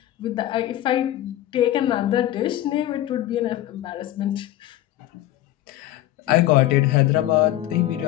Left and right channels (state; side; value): quieter; right; 14.0 dB